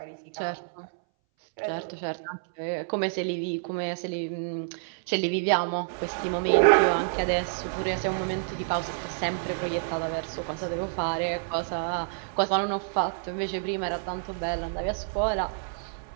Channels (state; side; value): silent; left; 59 dB below the other